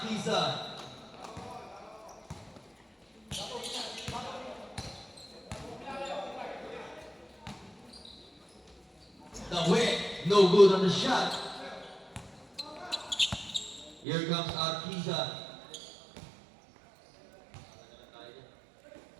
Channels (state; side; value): drops out; left; at 14.1 s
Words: The whip, no good on the shot. Here comes Arquiza.